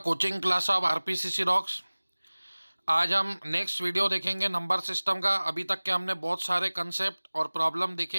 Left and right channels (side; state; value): both; inverted; correlation -1.00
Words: coaching class of RPCC rocks. आज हम next video देखेंगे number system का। अभी तक के हमने बहुत सारे कंसेप्ट और प्रॉब्लम